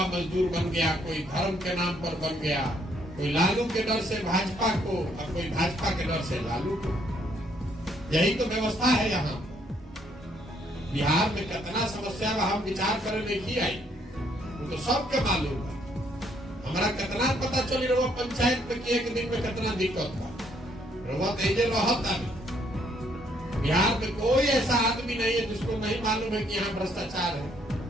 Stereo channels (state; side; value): normal; both; correlation 0.69